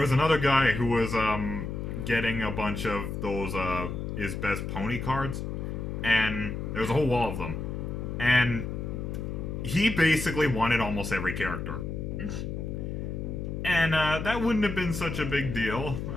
another guy who was getting a bunch of those is best pony cards, and there was a whole wall of them, and he basically wanted almost every character. And that wouldn't have been such a big deal.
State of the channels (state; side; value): noise; left; hum, 4 dB below the sound